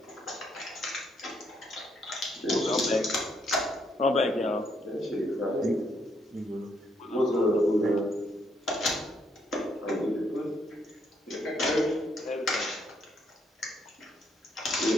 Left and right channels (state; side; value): normal; both; correlation 0.73